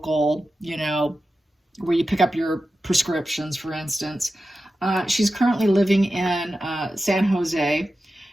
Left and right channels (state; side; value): normal; both; correlation 0.92